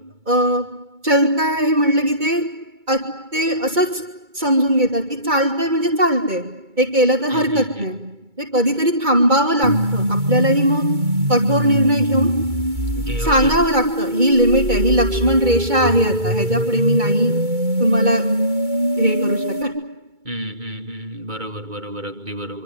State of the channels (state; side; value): late; left; 2.2 ms